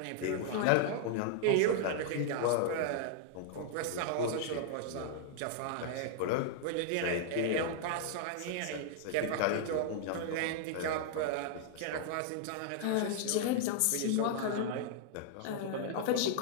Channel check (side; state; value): both; different; correlation -0.01